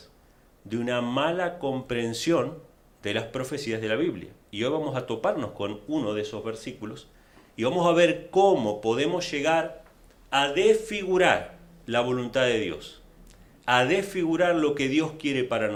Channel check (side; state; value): both; identical; correlation 1.00